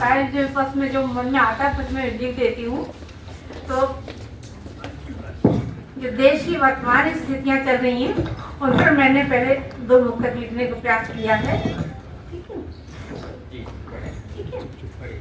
है। जो बस में जो मन में आता है बस मैं लिख देती हूँ। तो जो देश की वर्तमान स्थितियाँ चल रही हैं उन पर मैंने पहले 2 नुक्कड़ लिखने का प्रयास किया है। ठीक है, ठीक है।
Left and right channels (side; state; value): both; identical; correlation 1.00